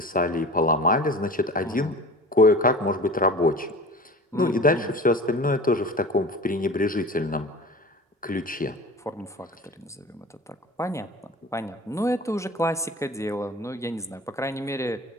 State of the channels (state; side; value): normal; both; correlation 0.37